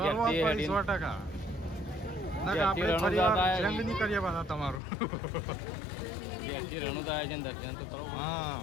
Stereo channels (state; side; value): drops out; right; at 4.8 s